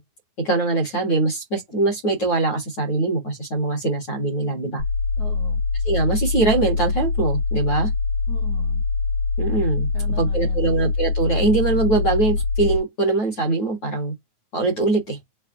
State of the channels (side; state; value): right; late; 9.3 ms